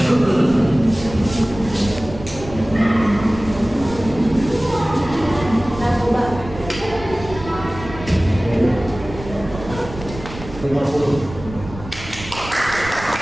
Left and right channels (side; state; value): right; noise; rumble, 13 dB below the sound